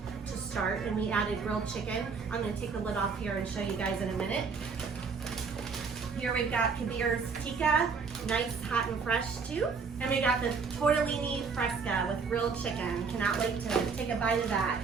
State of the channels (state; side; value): quieter; left; 5.3 dB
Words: to start, and we added grilled chicken. I'm gonna take the lid off here and show you guys in a minute. Here we've got Kabir's Tikka, nice, hot and fresh too. And we got the Tortellini Fresca with grilled chicken. Cannot wait to take a bite of that.